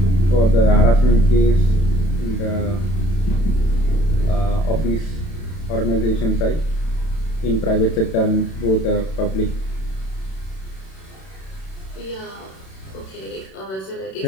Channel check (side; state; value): right; late; 31 ms